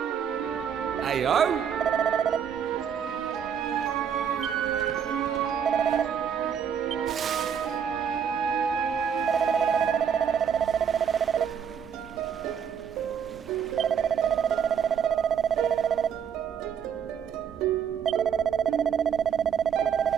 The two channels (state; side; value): quieter; left; 7.7 dB